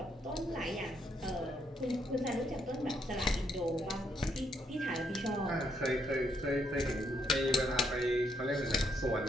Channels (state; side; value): normal; both; correlation 0.74